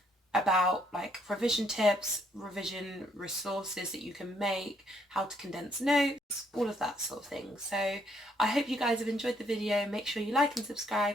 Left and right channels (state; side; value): normal; both; correlation 0.70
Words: About like revision tips, revision resources that you can make, how to condense notes, all of that sort of thing. So I hope you guys have enjoyed the video. Make sure you like and